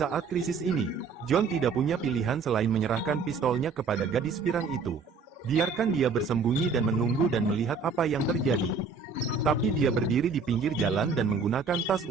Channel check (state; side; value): quieter; left; 4.9 dB